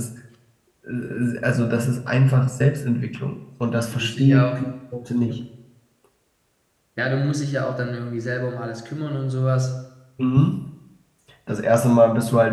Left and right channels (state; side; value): identical; both; correlation 1.00